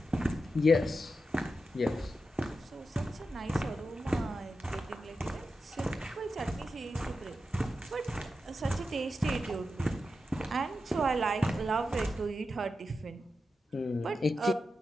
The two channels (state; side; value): normal; both; correlation 0.89